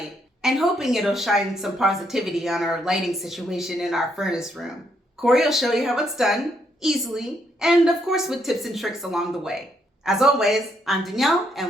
and hoping it'll shine some positivity on our lighting situation in our furnace room. Corey will show you how it's done, easily, and of course with tips and tricks along the way. As always, I'm Danielle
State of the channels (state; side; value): normal; both; correlation 0.74